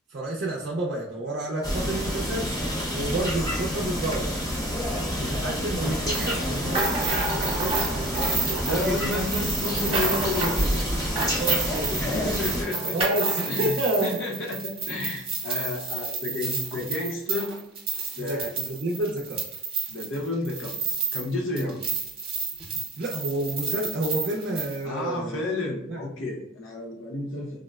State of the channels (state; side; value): normal; both; correlation 0.43